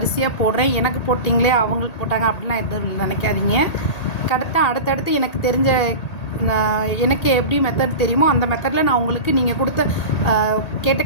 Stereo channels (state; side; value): late; right; 1.8 ms